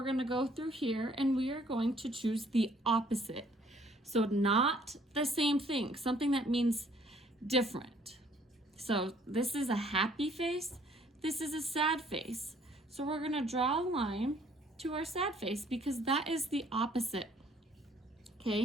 gonna go through here, and we are going to choose the opposite. So not the same thing, something that means different. So this is a happy face, this is a sad face. So we're gonna draw a line to our sad face because that is the opposite.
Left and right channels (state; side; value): normal; both; correlation 0.61